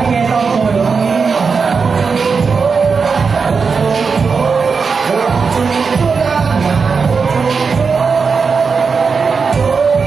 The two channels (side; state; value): left; quieter; 5.2 dB